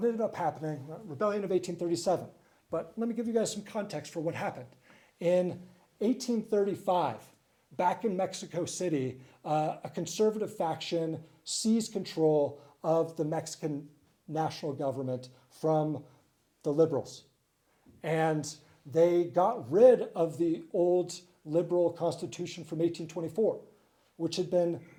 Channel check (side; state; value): both; identical; correlation 1.00